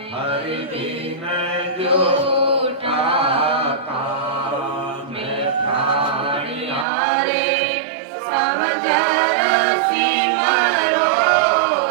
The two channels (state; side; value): drops out; left; at 6.9 s